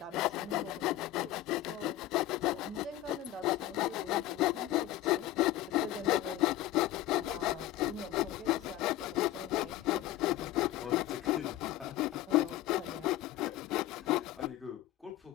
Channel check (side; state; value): right; quieter; 14.4 dB